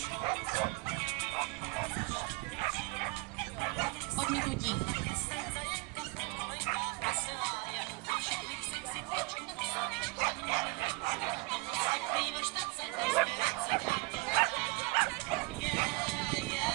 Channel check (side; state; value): left; quieter; 25.7 dB